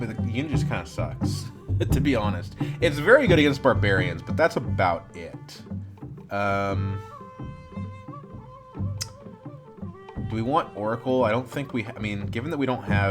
the unit just kind of sucks, to be honest. It's very good against barbarians, but that's about it. Do we want Oracle? I don't think we... I mean, given that we don't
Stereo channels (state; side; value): identical; both; correlation 1.00